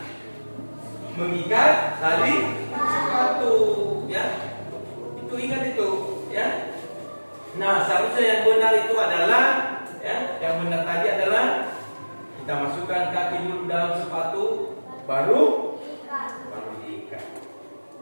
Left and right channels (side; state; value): both; inverted; correlation -1.00